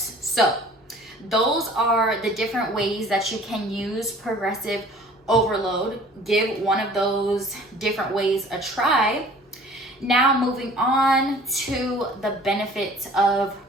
So those are the different ways that you can use progressive overload. Give one of those different ways a try. Now moving on to the benefits of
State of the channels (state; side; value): normal; both; correlation 0.50